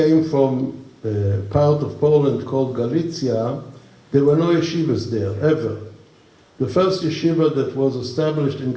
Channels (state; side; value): identical; both; correlation 1.00